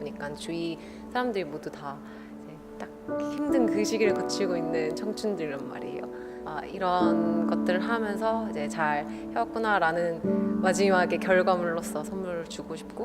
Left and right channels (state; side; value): identical; both; correlation 1.00